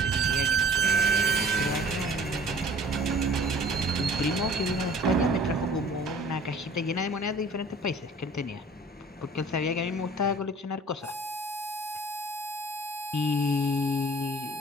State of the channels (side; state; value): both; normal; correlation 0.49